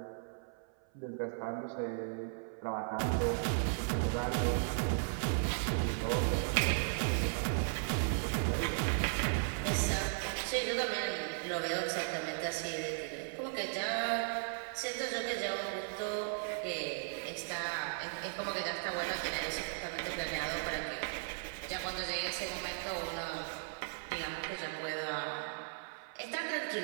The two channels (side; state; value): left; silent; 53 dB below the other